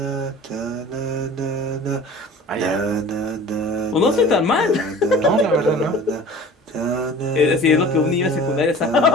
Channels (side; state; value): both; normal; correlation 0.43